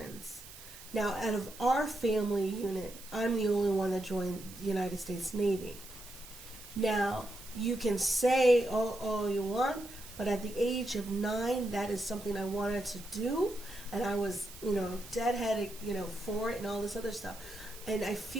Now, out of our family unit, I'm the only one that joined the United States Navy. Now, you can say all you want, but at the age of 9, that is something I wanted to do, and I was, deadheaded, for it and all this other stuff. And I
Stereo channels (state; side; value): noise; right; hiss, 16 dB below the sound